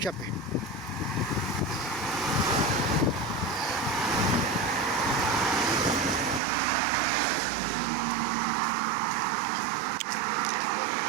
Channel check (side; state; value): left; drops out; at 6.4 s